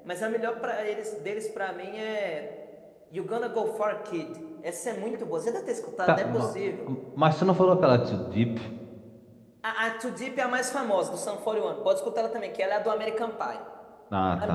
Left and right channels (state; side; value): identical; both; correlation 1.00